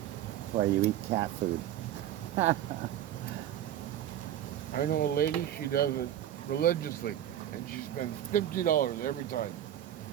That's why you eat cat food. I know a lady, she does it religiously, and she spends $50 every time.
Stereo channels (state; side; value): quieter; left; 11.5 dB